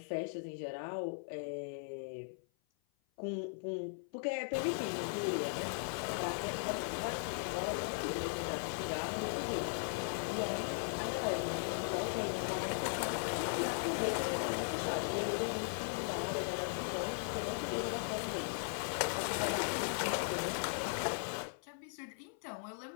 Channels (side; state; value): right; silent; 52 dB below the other